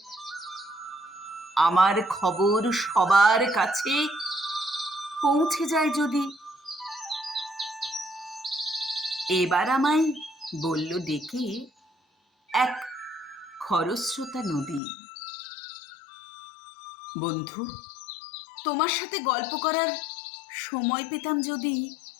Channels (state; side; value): drops out; right; at 14.8 s